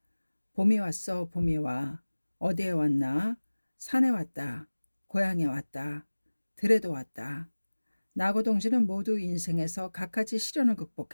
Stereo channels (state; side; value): inverted; both; correlation -1.00